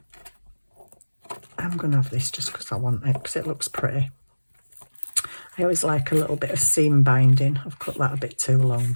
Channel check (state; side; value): inverted; both; correlation -1.00